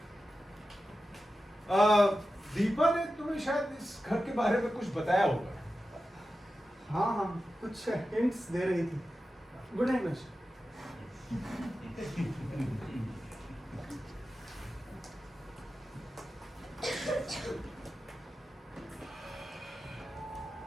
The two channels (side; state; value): both; normal; correlation 0.92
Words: Deepa ने तुम्हें शायद इस घर के बारे में कुछ बताया होगा। हाँ हाँ, कुछ हिंट्स दे रही थी। Good night Mahesh.